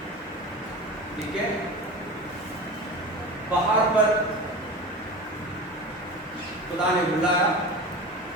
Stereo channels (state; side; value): normal; both; correlation 0.31